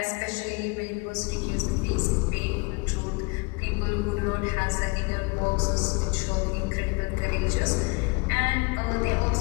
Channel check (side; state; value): right; quieter; 29.1 dB